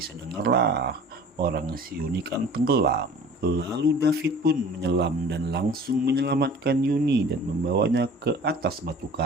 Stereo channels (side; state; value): both; normal; correlation 0.45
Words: dengarlah. Orang si Yuni kan tenggelam. Lalu David pun menyelam dan langsung menyelamatkan Yuni dan membawanya ke atas batu